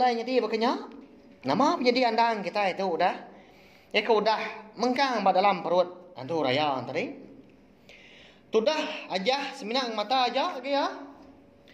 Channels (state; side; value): identical; both; correlation 1.00